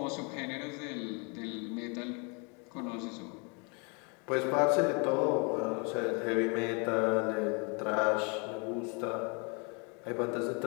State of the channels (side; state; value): right; quieter; 33.2 dB